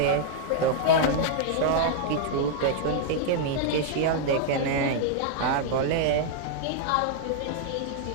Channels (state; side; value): different; both; correlation -0.01